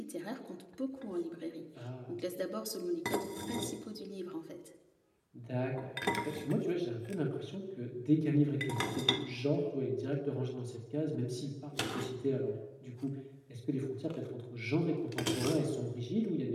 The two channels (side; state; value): both; identical; correlation 1.00